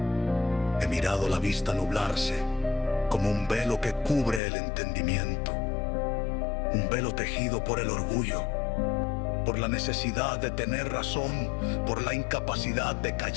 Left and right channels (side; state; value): right; drops out; at 4.4 s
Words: He mirado la vista nublarse, como un velo que cubre el entendimiento. Un velo tejido por el orgullo, por la necesidad de tener razón, por la incapacidad de